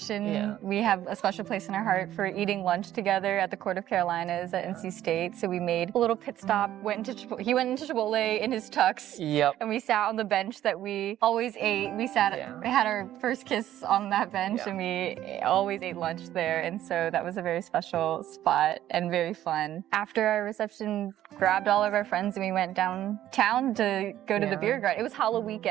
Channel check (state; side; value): quieter; left; 12.6 dB